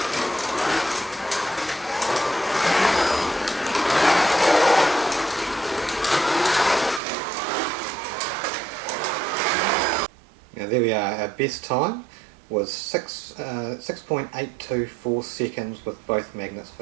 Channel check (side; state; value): left; drops out; at 7.0 s